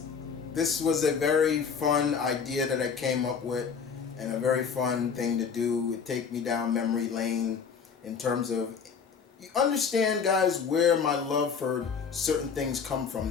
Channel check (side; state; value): right; quieter; 6.2 dB